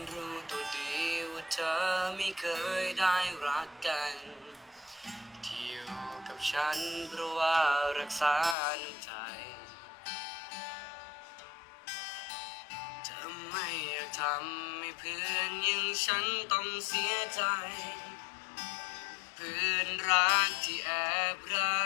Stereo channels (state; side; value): drops out; right; at 8.6 s